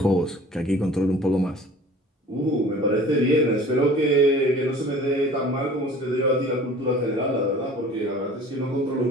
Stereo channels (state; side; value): normal; both; correlation 0.46